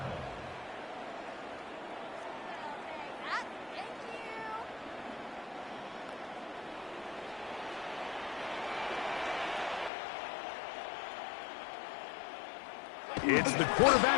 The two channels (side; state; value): right; drops out; at 9.9 s